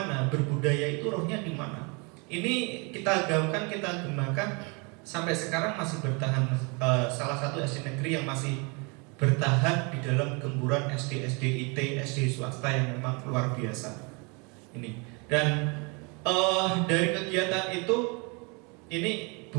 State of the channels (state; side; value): quieter; left; 31.2 dB